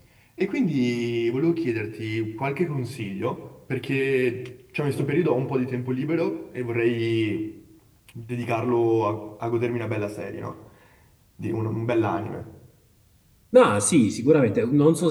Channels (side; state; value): both; identical; correlation 1.00